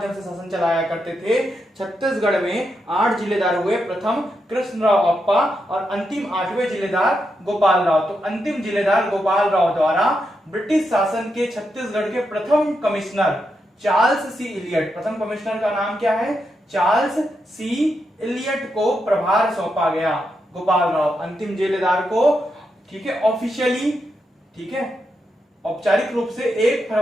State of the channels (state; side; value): normal; both; correlation 0.84